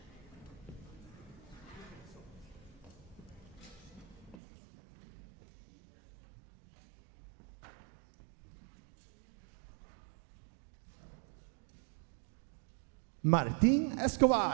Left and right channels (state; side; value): drops out; left; at 4.4 s